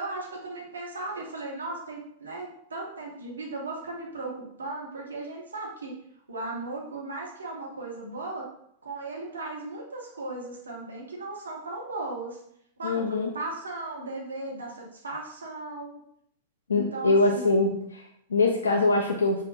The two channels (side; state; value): both; inverted; correlation -0.51